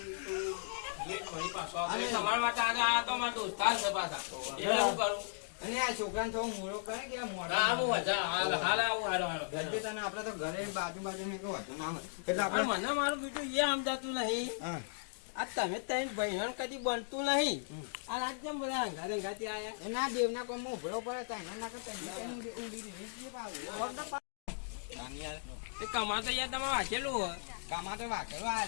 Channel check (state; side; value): silent; right; digital silence